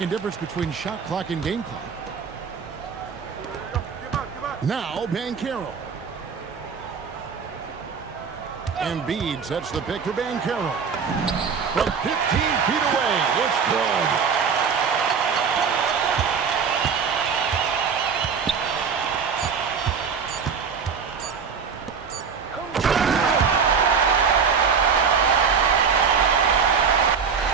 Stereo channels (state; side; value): quieter; left; 6.2 dB